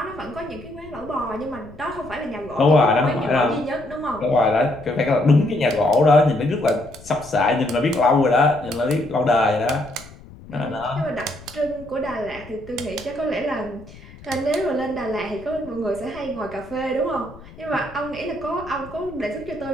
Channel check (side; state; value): left; noise; rumble, 19 dB below the sound